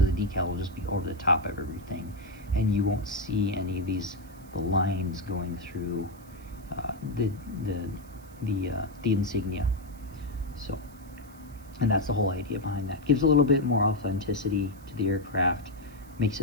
decal will just be over the top of everything, and you won't see any of the lines going through the insignia. So, and that's the whole idea behind that. Gives a little bit more authenticity to the aircraft, makes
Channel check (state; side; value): noise; right; hiss, 25 dB below the sound